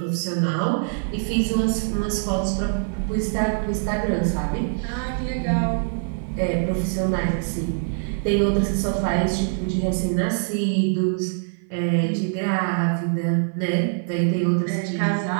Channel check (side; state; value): left; silent; 55 dB below the other